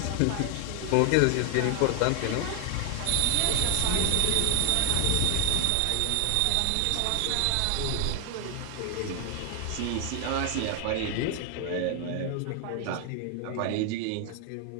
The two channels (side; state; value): both; different; correlation 0.01